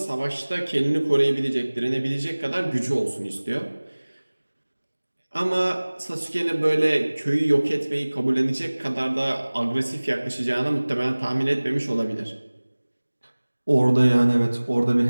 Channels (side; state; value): both; inverted; correlation -1.00